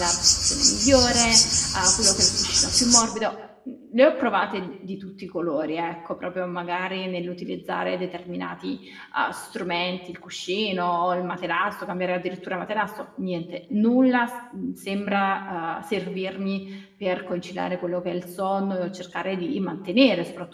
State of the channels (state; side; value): identical; both; correlation 1.00